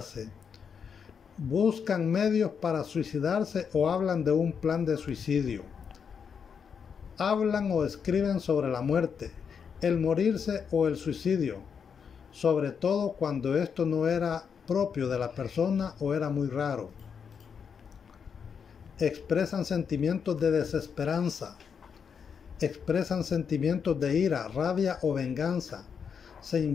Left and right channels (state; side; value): quieter; right; 6.7 dB